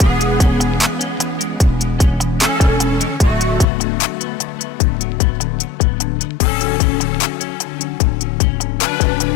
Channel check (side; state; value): right; drops out; at 3.7 s